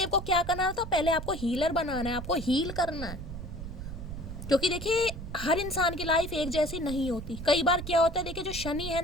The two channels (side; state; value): right; noise; rumble, 9 dB below the sound